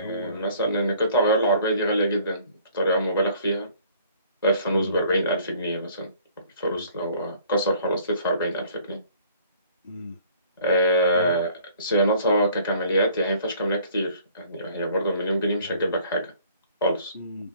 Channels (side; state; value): both; inverted; correlation -0.56